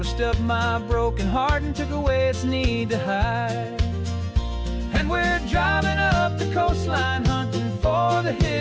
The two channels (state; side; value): identical; both; correlation 1.00